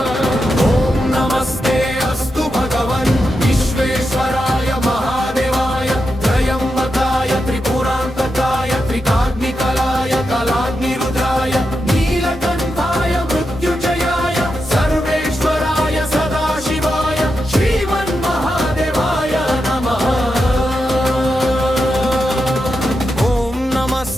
ॐ नमस्ते अस्तु भगवन् विश्वेश्वराय महादेवाय त्रयंबकाय त्रिपुरान्तकाय त्रिकाग्निकालाय कालाग्निरुद्राय नीलकण्ठाय मृत्युञ्जयाय सर्वेश्वराय सदाशिवाय श्रीमन्महादेवाय नमः। ॐ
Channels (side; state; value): both; normal; correlation 0.87